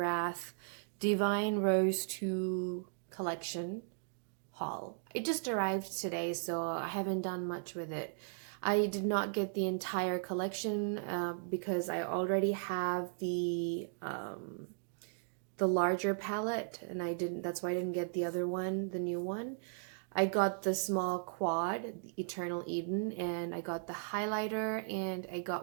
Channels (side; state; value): left; silent; digital silence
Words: Divine Rose II collection haul. It just arrived today, so I haven't done much with it. I did not get the entire collection because I already have the larger palette, and that's why I didn't get the other one, the new one. I got the small quad, the Eternal Eden, and I got the highlighter, and I